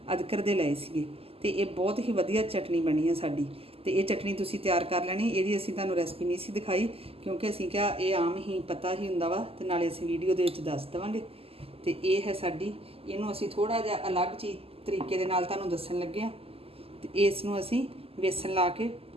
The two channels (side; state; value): left; late; 0.28 ms